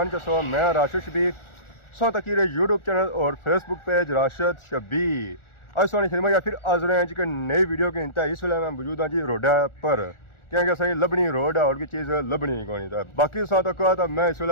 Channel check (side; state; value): right; late; 1.4 ms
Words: के सौ मैं राशिद शबीर सौ तकीर यूट्यूब चैनल और फेसबुक पेज राशिद शबीर आज सोनी फिल्म या फिर आज रहे हैं जी नई वीडियो के इंतहा इस वेले मैं मौजूद हाँ जी रोडा पर क्योंकि सही लभनी रोड है और की चीज़ लभनी कौन था बाकी सौ तक तो मैं इस